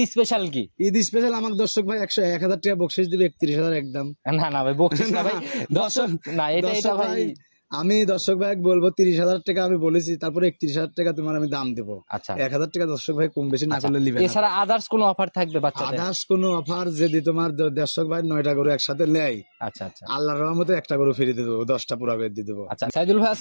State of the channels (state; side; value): inverted; both; correlation -1.00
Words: স্পেশাল কি? ঈদ স্পেশাল আমার দর্শক ভাই 1,000 টাকা বকশিস দিবে, 31,000 একদম। না না ভাই, বকশিস না ভাই, দর্শক না, এটা ভাই আমি দর্শক ভাই বলবো 30,000 টাকা আমি বলেছি, তারপরে 31,000 টাকা তোমার আমি দাম দেবো। আচ্ছা, 1,000 টাকা দর্শক ভাই কম বেশি না করলে নিবে। এছাড়া আদার্স কোনো অফার থাকবে বাচ্চাদের? আদার্স কোনো অফার যদি তোমার দর্শক ভাই 9টা গরু একসাথে নেয়, আচ্ছা আচ্ছা, আল্লাহর রহমতে একটা গরু ফ্রি দিয়ে দেবো, 10টা পুরা করে দিয়ে দেবো। আচ্ছা, সাইদুল ভাই